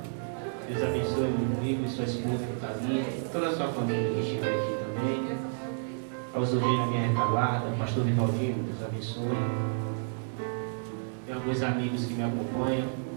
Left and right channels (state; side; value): silent; left; 58 dB below the other